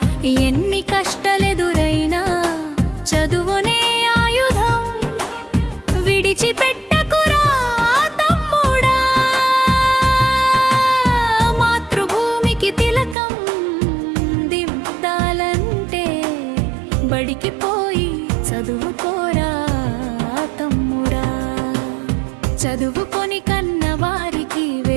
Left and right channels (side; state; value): left; drops out; at 13.2 s